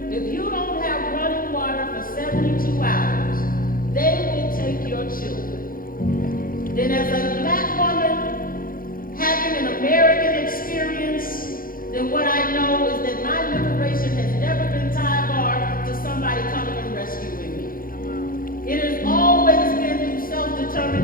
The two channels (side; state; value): right; late; 0.41 ms